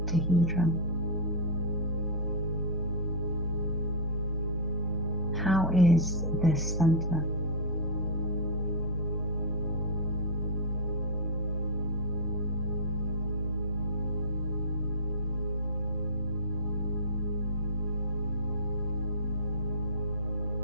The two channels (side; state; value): both; normal; correlation -0.10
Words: How is this center?